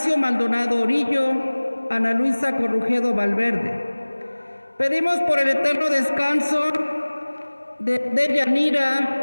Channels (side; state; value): both; inverted; correlation -1.00